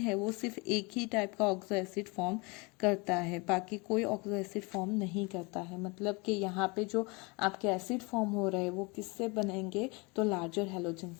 वो सिर्फ एक ही टाइप का ऑक्सो एसिड फॉर्म करता है, बाकी कोई ऑक्सो एसिड फॉर्म नहीं करता है। मतलब कि यहाँ पे जो आपके एसिड फॉर्म हो रहे हैं वो किससे बनेंगे, तो लार्जर हैलोजन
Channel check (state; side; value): quieter; right; 28.1 dB